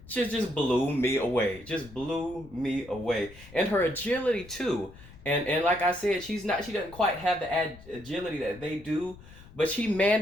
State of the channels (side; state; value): left; noise; rumble, 20 dB below the sound